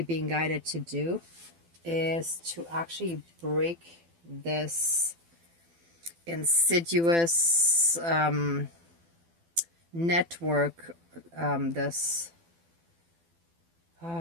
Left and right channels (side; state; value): left; late; 12 ms